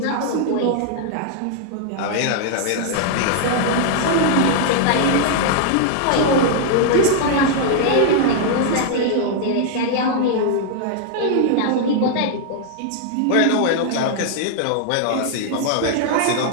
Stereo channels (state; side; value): different; both; correlation -0.01